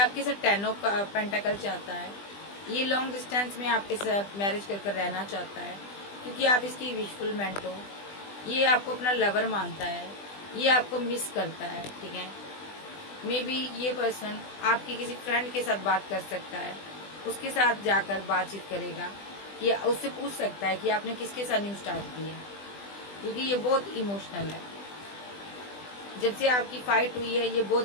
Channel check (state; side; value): late; right; 20 ms